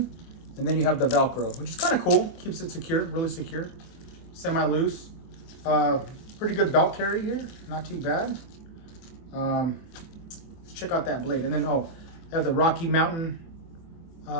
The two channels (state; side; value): late; right; 24 ms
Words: and then you have the Velcro, which is kind of cool. Keeps it secure, really secure. Semi-loose. Pretty good belt carry here. Not too bad. Let's check out that blade. And then, they have the Rocky Mountain